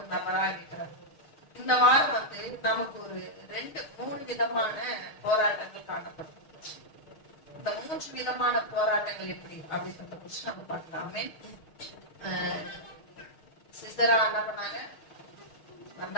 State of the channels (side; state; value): right; late; 6.5 ms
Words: நபரா இருக்கிறார். இந்த வாரம் நமக்கு ஒரு 2-3 விதமான போராட்டங்கள் காணப்படும். இந்த 3 விதமான போராட்டங்கள் எப்படி அப்படின்றத குறிச்சு நம்ம பார்க்கலாமே. சிசரா என்ன பண்ணாங்க,